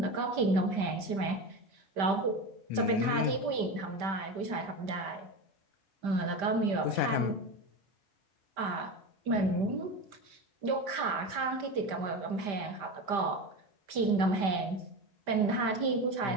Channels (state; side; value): late; left; 5.1 ms